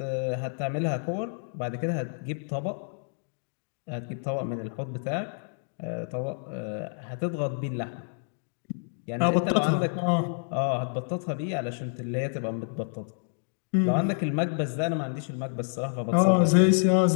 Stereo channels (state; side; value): silent; right; digital silence